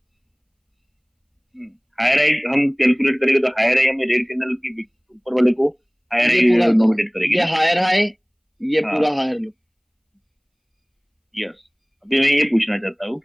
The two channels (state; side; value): identical; both; correlation 1.00